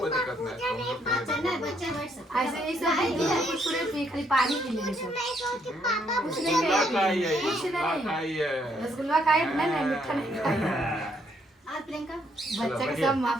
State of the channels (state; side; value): normal; both; correlation 0.71